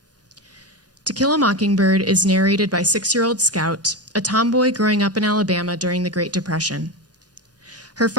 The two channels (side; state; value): both; normal; correlation 0.17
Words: To Kill a Mockingbird is narrated by 6-year-old Scout, a tomboy growing up in Alabama during the Great Depression. Her